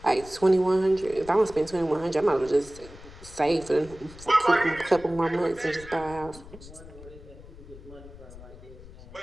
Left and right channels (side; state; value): left; noise; rumble, 18 dB below the sound